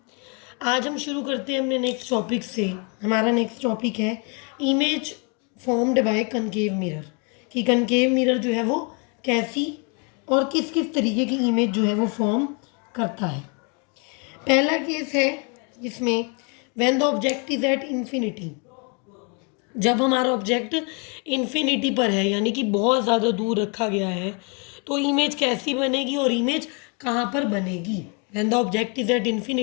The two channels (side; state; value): right; quieter; 34.3 dB